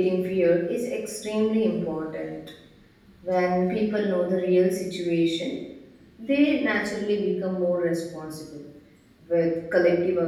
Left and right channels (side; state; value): both; identical; correlation 1.00